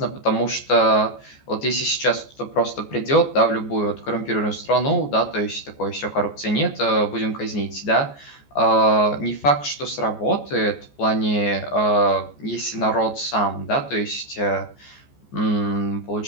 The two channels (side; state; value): right; late; 14 ms